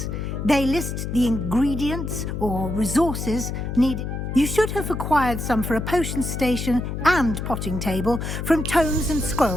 They list the ingredients or resources needed. You should have acquired some for a potion station and potting table from tomes and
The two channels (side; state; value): left; noise; hum, 4 dB below the sound